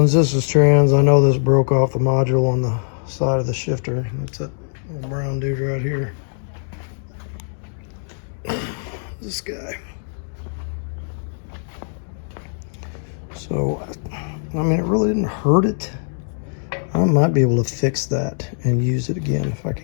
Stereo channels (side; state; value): right; silent; digital silence